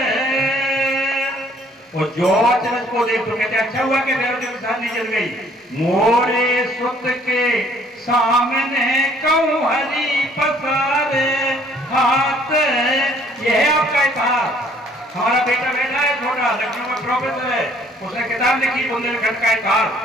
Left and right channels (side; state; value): both; normal; correlation 0.60